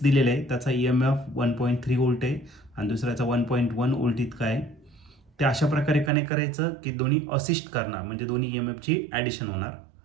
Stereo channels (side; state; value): left; drops out; at 6.1 s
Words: दिलेले आहे, त्याचा EMF 1.3 व्होल्ट आहे आणि दुसऱ्याचा 1.1 व्होल्ट इतका आहे. ते अशा प्रकारे कनेक्ट करायचं की दोन्ही असिस्ट करणार, म्हणजे दोन्ही EMFची ॲडिशन होणार.